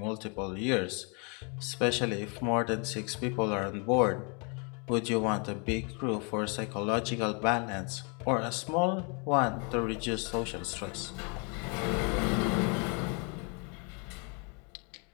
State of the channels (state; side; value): quieter; right; 34.9 dB